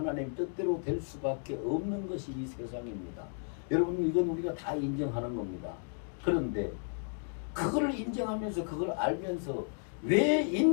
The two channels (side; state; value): right; silent; 56 dB below the other